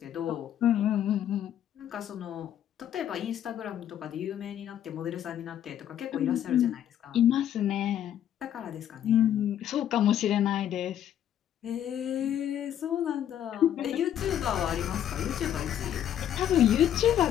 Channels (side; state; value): right; quieter; 10.5 dB